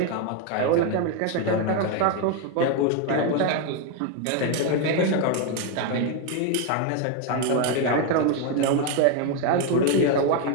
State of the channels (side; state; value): both; different; correlation 0.01